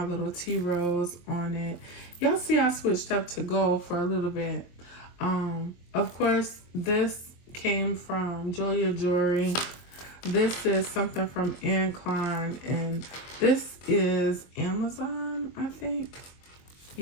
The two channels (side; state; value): right; late; 23 ms